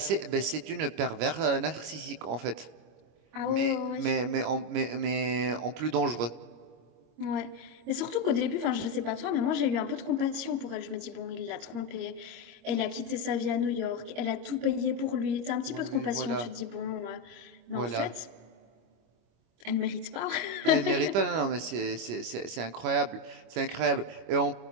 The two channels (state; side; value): late; left; 25 ms